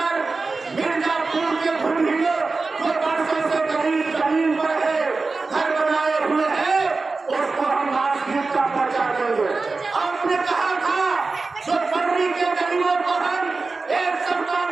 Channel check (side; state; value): left; quieter; 3.9 dB